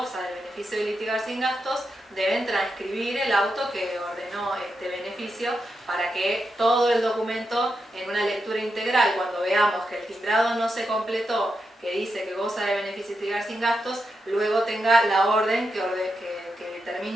del beneficio de litigar sin gastos, deben transcribir el auto que ordenó este beneficio para que todo el documento, en una lectura integral, cuando veamos que el timbrado no se completó, que dice que goza de beneficio de litigar sin gastos, luego tenga la orden que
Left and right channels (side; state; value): both; normal; correlation 0.86